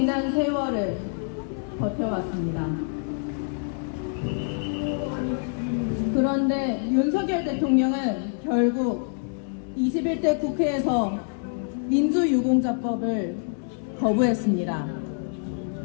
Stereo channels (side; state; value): right; silent; 59 dB below the other